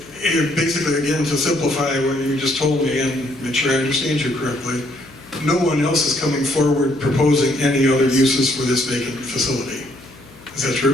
basically, again, to simplify what you just told me and make sure I understand you correctly, no one else is coming forward proposing any other uses for this vacant facility. Is that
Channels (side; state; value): left; noise; hum, 23 dB below the sound